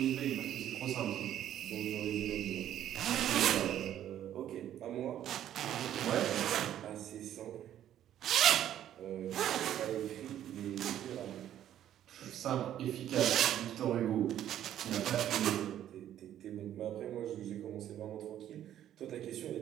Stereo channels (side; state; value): left; quieter; 11.3 dB